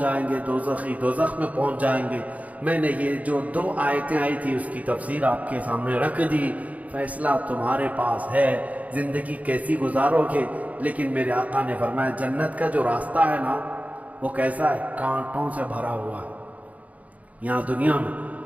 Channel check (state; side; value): late; left; 0.071 ms